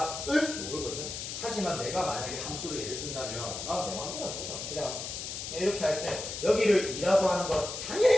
모르거든. 하지만 내가 만약에 함수를 예를 든다면 난 내 마음대로 할 거다. 그냥 이렇게 할 때 여기를 2라고 하는 건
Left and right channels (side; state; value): left; noise; hiss, 6 dB below the sound